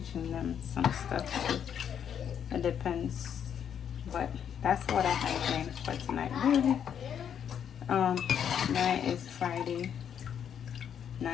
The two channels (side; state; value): right; quieter; 8.5 dB